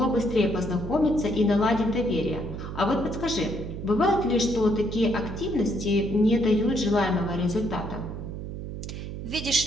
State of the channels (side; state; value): right; noise; hum, 8 dB below the sound